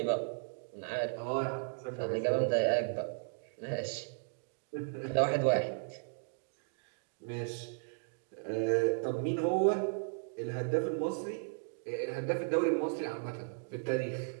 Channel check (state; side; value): silent; left; digital silence